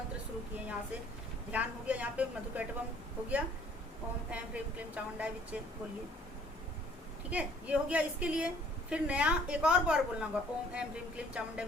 शुरू किए, यहाँ से ध्यान हो गया, यहाँ पे मधुकैटवम हो गया, ओम ऐम ह्रीम क्लीम चामुंडाय विच्चे बोलिए, ठीक है, ये हो गया। इसके लिए फिर नया एक और बार बोलना होगा, ओम ऐम ह्रीम क्लीम चामुंडाय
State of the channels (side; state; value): both; normal; correlation 0.58